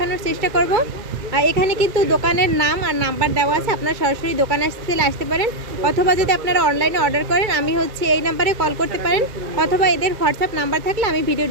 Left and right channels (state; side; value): late; left; 2.1 ms